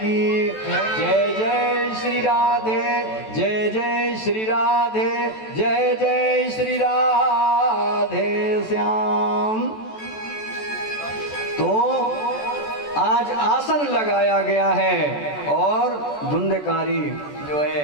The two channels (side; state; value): right; late; 14 ms